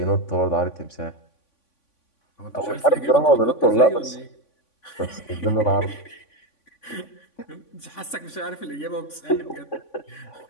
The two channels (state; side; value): late; right; 3.5 ms